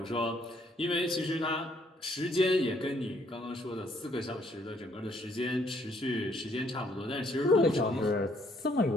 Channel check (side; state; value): both; normal; correlation 0.67